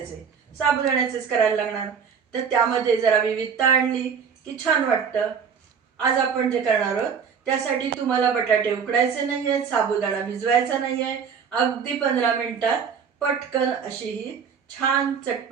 साबुदाण्याचेच करायला लागणार। तर त्यामध्ये जरा विविधता आणली की छान वाटतं। आज आपण जे करणार आहोत त्यासाठी तुम्हाला बटाटे उकडायचे नाहीये, साबुदाणा भिजवायचा नाहीये, अगदी 15 मिनिटात पटकन अशी ही छान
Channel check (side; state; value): left; quieter; 6.7 dB